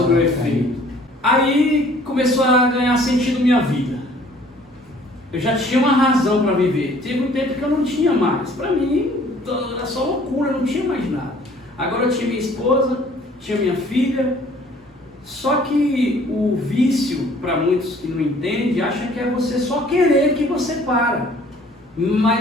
o efeito. Aí começou a ganhar sentido minha vida. Eu já tinha uma razão para viver. Teve um tempo que eu não tinha mais. Para mim, era só loucura, não tinha mais nada. Agora eu tinha minha esposa, tinha minha filha. Só que o vício, para muitos que não entendem, acha que é você só querer que você para.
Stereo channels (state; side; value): normal; both; correlation 0.56